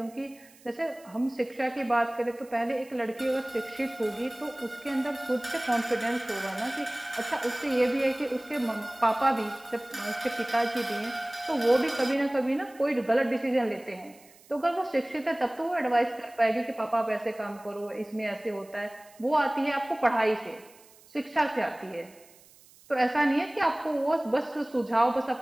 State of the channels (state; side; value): noise; right; hiss, 26 dB below the sound